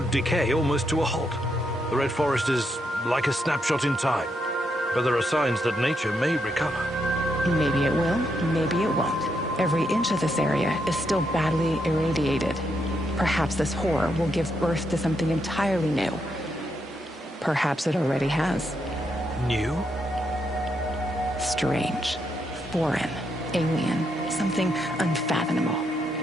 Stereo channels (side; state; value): both; normal; correlation 0.79